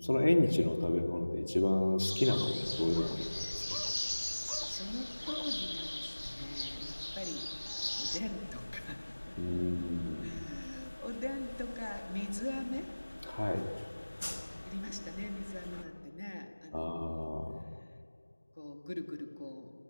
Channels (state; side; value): inverted; both; correlation -1.00